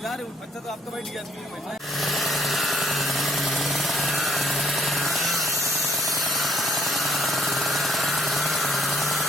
यार अच्छा तो आपका बैठ गया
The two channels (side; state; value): both; normal; correlation 0.63